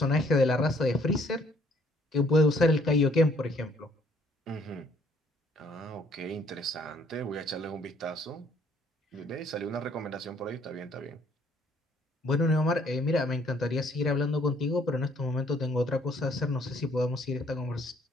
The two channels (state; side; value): normal; both; correlation 0.63